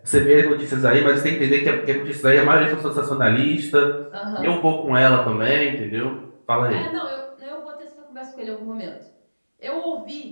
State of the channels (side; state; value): both; inverted; correlation -1.00